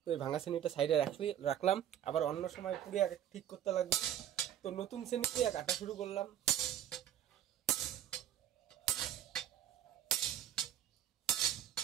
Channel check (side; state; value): left; quieter; 10.8 dB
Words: তো এই ভাঙা শ্রেণীটা সাইডে রাখলাম, আবার অন্য সময় পুড়ে ঠিক করতে লাগবে। তো নতুন শ্রেণী দিয়ে কাটা শুরু করলাম।